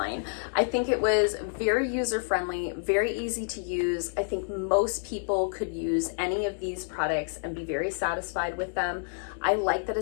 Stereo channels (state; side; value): silent; right; digital silence